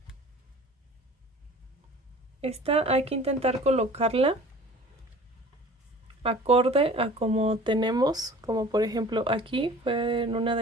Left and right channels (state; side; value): normal; both; correlation 0.45